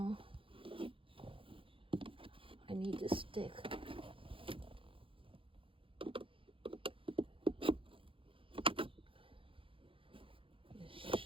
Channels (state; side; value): late; left; 0.25 ms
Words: I need to stick this